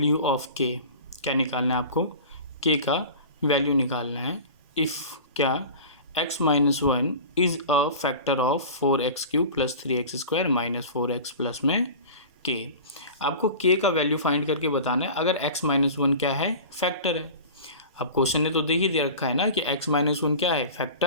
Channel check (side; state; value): both; inverted; correlation -0.36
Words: ऑफ के। क्या निकालना है आपको? के का वैल्यू निकालना है। इफ़ क्या x minus 1 is a factor of 4x³ plus 3x² minus 4x plus में k। आपको k का वैल्यू फाइंड करके बताना है अगर x माइनस 1 क्या है, फैक्टर है। अब क्वेश्चन ने तो देख ही दे रखा है ना कि x माइनस 1 क्या है,